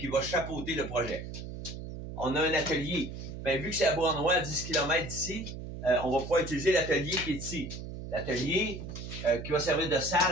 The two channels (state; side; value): noise; right; hum, 9 dB below the sound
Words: va chapeauter le projet. On a un atelier. Bien, vu que c'est à Beauharnois, à 10 km d'ici, on va pouvoir utiliser l'atelier qui est ici. L'atelier qui va servir de